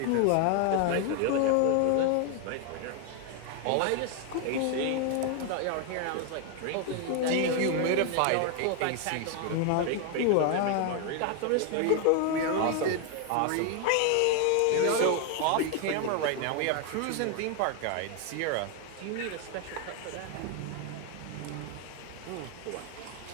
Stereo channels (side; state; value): both; different; correlation 0.01